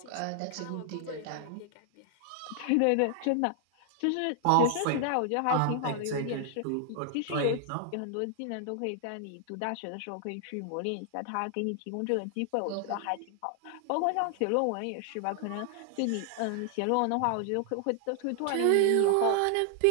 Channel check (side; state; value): both; different; correlation 0.00